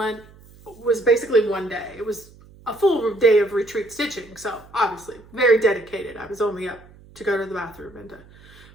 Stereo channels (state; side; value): noise; right; hum, 24 dB below the sound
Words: was basically one day. It was a full day of retreat stitching. So obviously very dedicated. I was only up to go to the bathroom and to